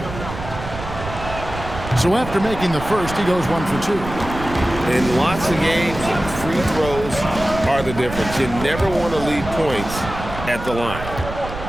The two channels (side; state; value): right; noise; rumble, 10 dB below the sound